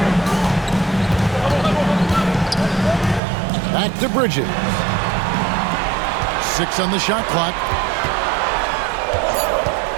Back to Bridges. 6 on the shot clock.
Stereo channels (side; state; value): left; drops out; at 3.2 s